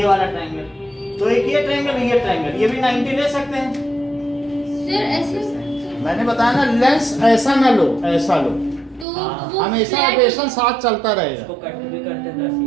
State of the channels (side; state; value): left; drops out; at 9.1 s